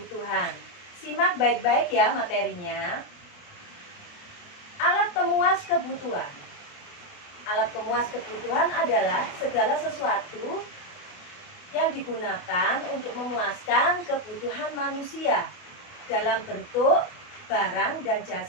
Simak baik-baik ya materinya. Alat pemuas kebutuhan. Alat pemuas kebutuhan adalah segala sesuatu yang digunakan untuk memuaskan kebutuhan manusia dalam bentuk barang dan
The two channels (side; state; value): right; late; 28 ms